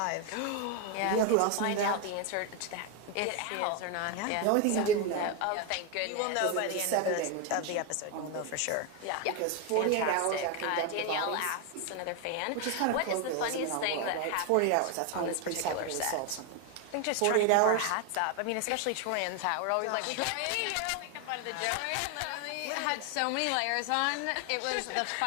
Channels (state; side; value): different; both; correlation 0.01